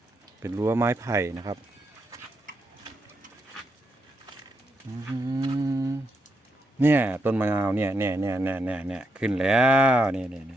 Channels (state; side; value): normal; both; correlation 0.81